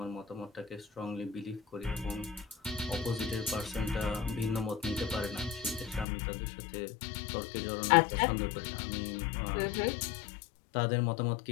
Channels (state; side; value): drops out; right; at 6.1 s